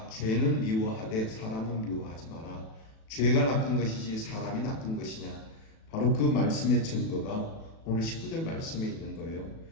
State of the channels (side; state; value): right; late; 37 ms